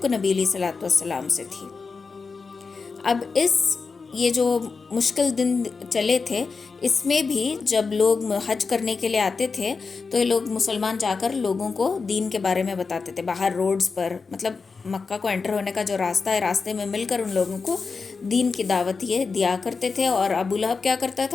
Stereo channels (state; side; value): quieter; right; 4.7 dB